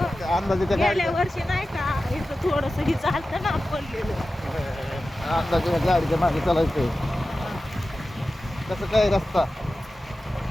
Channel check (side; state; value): both; normal; correlation 0.94